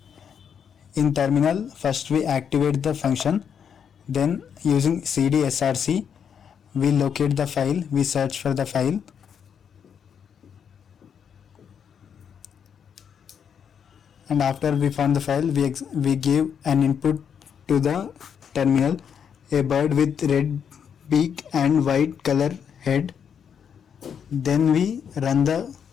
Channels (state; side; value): quieter; right; 7.6 dB